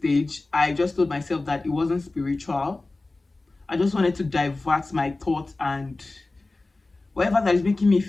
I just told myself that it wasn't spiritual. I just wanted to divert my thoughts, and whatever that is making me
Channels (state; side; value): quieter; right; 3.2 dB